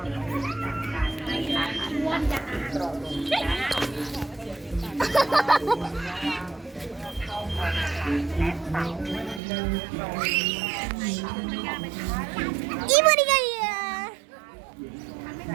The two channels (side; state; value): left; drops out; at 9.4 s